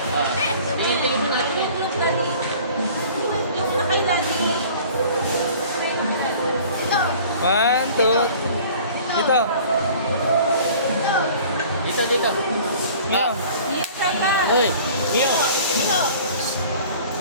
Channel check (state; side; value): inverted; both; correlation -0.47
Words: One, two. Dito. Dito. Mio. Hoy, Mio.